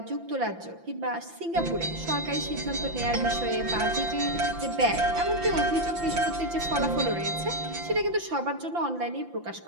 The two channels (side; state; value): left; late; 5.8 ms